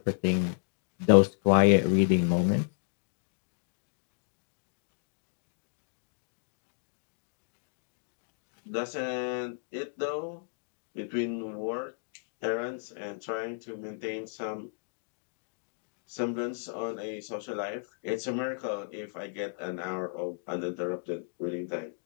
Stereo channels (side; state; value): right; silent; digital silence